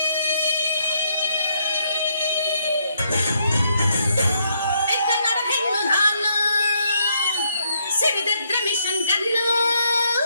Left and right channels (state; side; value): inverted; both; correlation -0.74